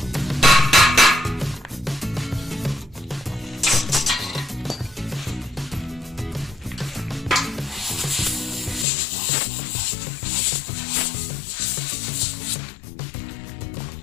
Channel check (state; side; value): drops out; right; at 8.8 s